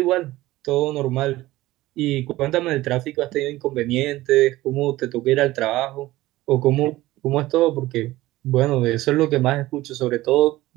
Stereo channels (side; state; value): left; quieter; 17.4 dB